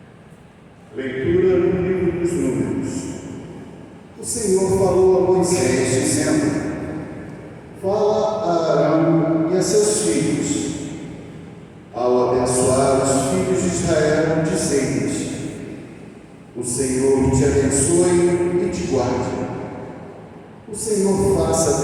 Leitura no livro dos Números. O Senhor falou a Moisés, dizendo: fala a Arão e a seus filhos, ao abençoar os filhos de Israel, dizendo-lhes: o Senhor te abençoe e te guarde. O Senhor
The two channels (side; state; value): both; identical; correlation 1.00